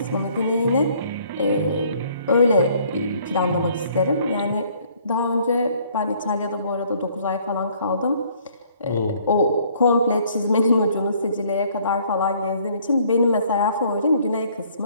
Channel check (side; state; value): both; inverted; correlation -0.61